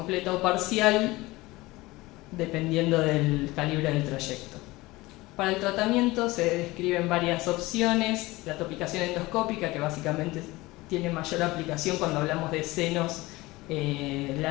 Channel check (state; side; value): quieter; right; 20.4 dB